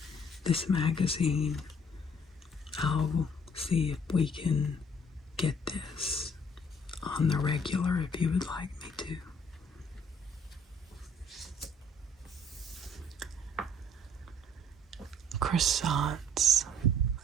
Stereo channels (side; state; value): both; normal; correlation 0.60